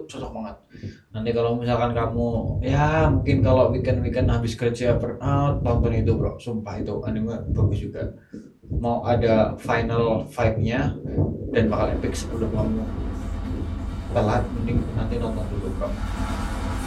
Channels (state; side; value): identical; both; correlation 1.00